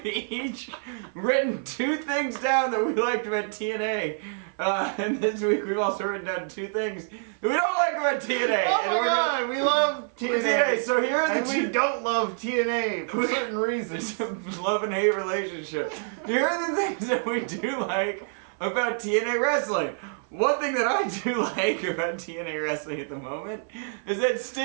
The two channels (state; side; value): silent; left; 60 dB below the other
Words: each written 2 things down that we liked about TNA. And this week we've also written down 2 things that we don't like about TNA. Oh my god, we love TNA. So here are the 2. We don't love TNA for certain reasons. It's a love and hate relationship. Here are the things that we do like about TNA wrestling. One thing that I do like about TNA wrestling at the moment is that